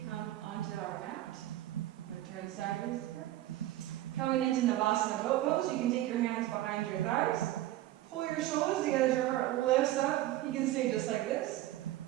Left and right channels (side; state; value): left; quieter; 15.0 dB